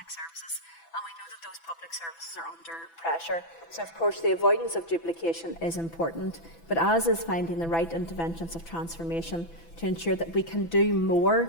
services, and we know that those public services are under pressure. So of course the avoidance of duplication is important, but as is finding the right interventions of transformation to ensure that we can do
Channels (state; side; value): late; right; 6.0 ms